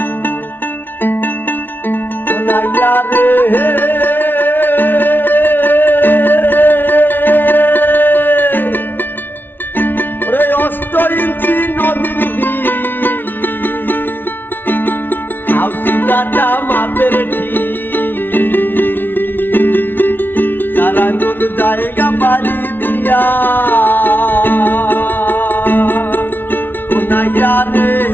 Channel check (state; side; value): late; right; 0.098 ms